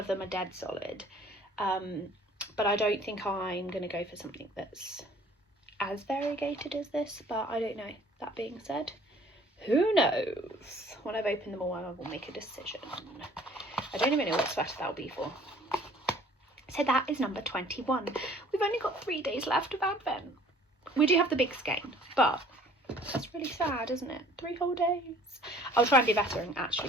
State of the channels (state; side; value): normal; both; correlation 0.54